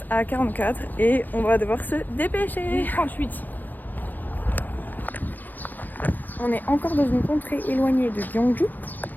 à 44 et on va devoir se dépêcher. 38. On est encore dans une contrée éloignée de Gyeongju.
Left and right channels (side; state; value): right; late; 0.085 ms